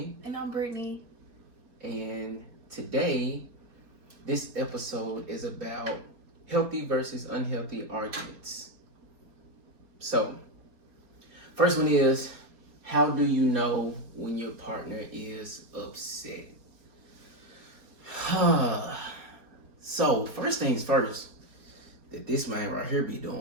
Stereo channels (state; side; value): late; left; 4.3 ms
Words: And I'm Brittany. And today, this episode is about healthy versus unhealthy arguments. So, first one is, how do you know when your partner is upset? So, first things first, that this man right here be